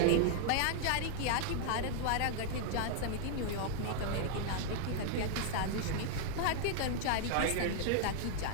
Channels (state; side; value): different; both; correlation 0.00